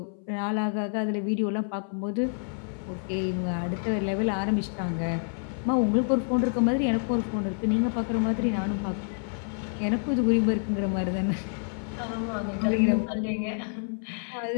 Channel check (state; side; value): silent; right; 58 dB below the other